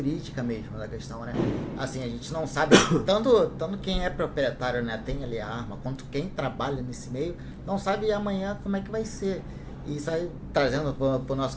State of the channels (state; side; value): identical; both; correlation 1.00